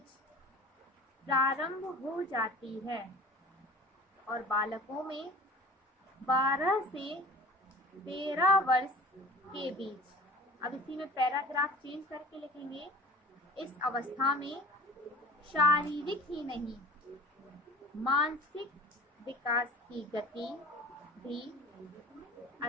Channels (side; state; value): both; normal; correlation 0.42